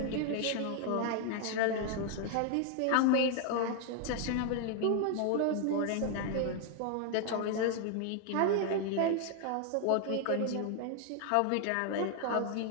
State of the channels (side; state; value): both; different; correlation 0.00